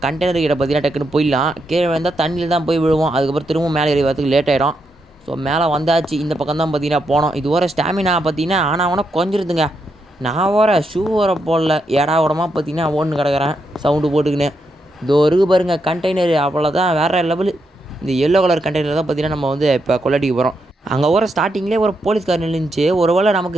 கண்டெய்னர் கிட்ட பார்த்தீங்கன்னா டக்குன்னு போயிடலாம். கீழே வந்தால் தண்ணியில் தான் போய் விழுவோம். அதுக்கப்புறம் திரும்ப மேலே ஏறி வரதுக்கு லேட் ஆகிடும். ஸோ மேலே வந்தாச்சு. இந்த பக்கம் தான் பார்த்தீங்கன்னா போனோம். இது வர ஸ்டாமினா பார்த்தீங்கன்னா ஆனால் கொஞ்சிருதுங்க. நான் வர ஷூ வர போடல, ஏடா உடமா பார்த்தீங்கன்னா ஓடுன்னு கிடக்கிறேன் சவுண்டு போட்டுக்கின்னு. இதோ இருக்கு பாருங்க கண்டெய்னர், அவ்வளோதான் வேறு லெவலு. இந்த எல்லோ கலர் கண்டெய்னர் தான் பார்த்தீங்கன்னா நம்ம வந்து இப்போ கொள்ளடிக்க போகிறோம். அங்கே வர ஸ்டார்டிங்லேயே ஒரு போலீஸ்கார் நின்றுச்சு. ஒருவேளை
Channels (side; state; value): both; normal; correlation 0.81